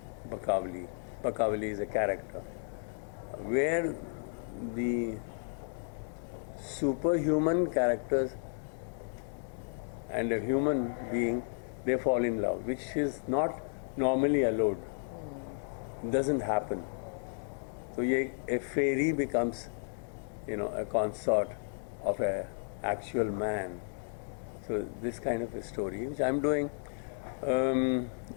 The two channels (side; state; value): right; silent; digital silence